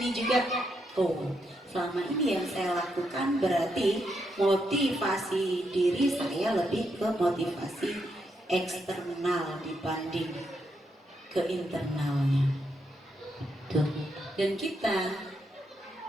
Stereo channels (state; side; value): normal; both; correlation 0.80